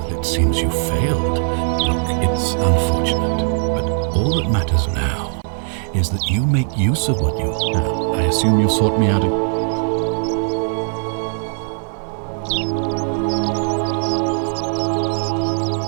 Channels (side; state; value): left; silent; 55 dB below the other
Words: it seems you failed. Look, it's unfortunate, but all that matters now is that you make use of what you... Now, I assume you've sought me out...